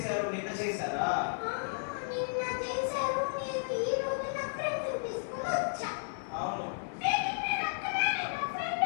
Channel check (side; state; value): right; silent; 56 dB below the other